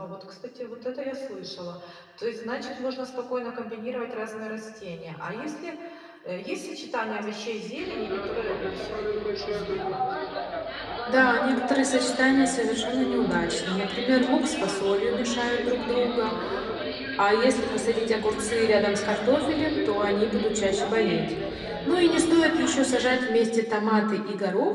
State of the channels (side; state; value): both; identical; correlation 1.00